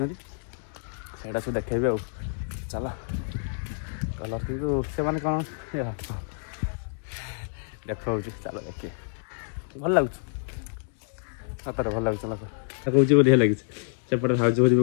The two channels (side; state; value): right; silent; digital silence